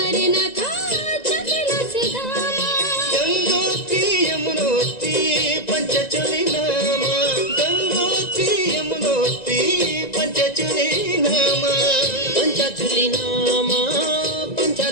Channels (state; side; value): late; right; 1.9 ms